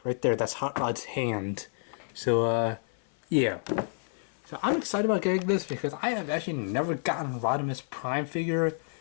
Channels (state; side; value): silent; right; 58 dB below the other